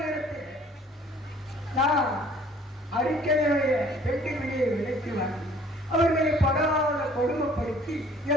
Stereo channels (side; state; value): both; normal; correlation 0.55